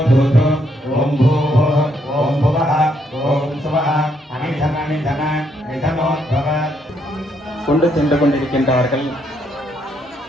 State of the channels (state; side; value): normal; both; correlation 0.74